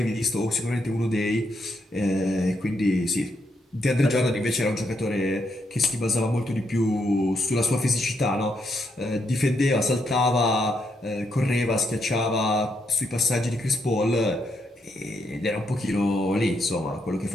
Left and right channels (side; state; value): both; normal; correlation 0.78